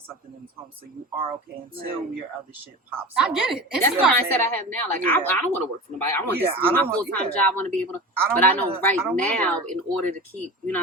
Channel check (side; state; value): both; normal; correlation 0.31